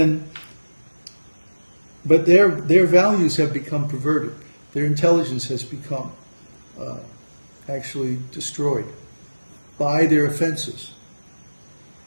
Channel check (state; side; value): inverted; both; correlation -1.00